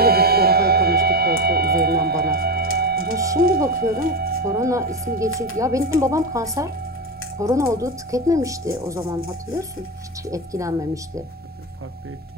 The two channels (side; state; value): both; normal; correlation 0.16